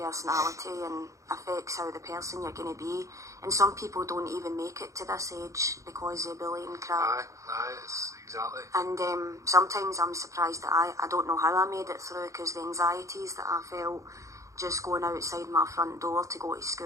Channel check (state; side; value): late; left; 0.15 ms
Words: and affects how the person you're going to be, and some people don't even make it to this age because of bullying crap. It's exactly. And sometimes I'm surprised that I don't know how I made it through, because the anxieties that I felt just going outside my front door to go to